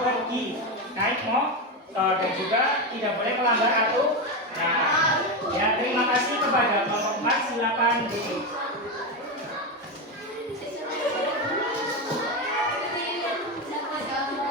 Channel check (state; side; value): normal; both; correlation 0.13